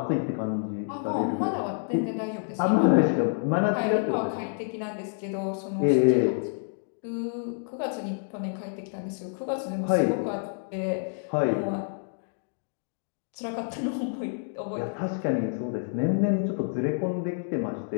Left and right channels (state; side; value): silent; right; digital silence